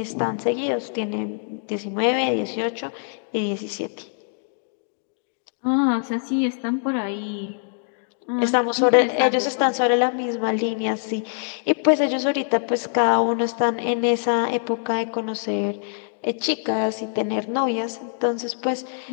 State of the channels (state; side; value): silent; right; digital silence